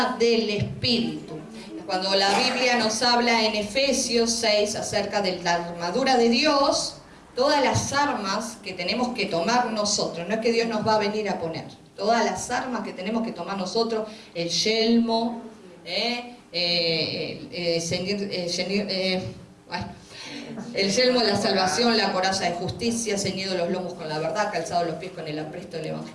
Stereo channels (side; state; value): both; identical; correlation 1.00